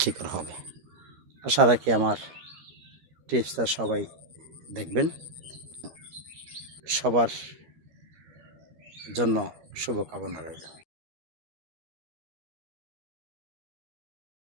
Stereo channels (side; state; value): left; late; 13 ms